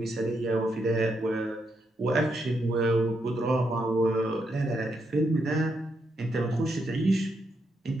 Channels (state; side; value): normal; both; correlation 0.80